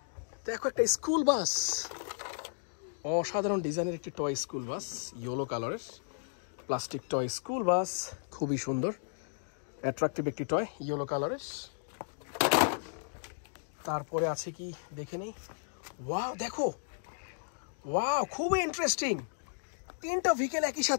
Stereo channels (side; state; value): right; silent; digital silence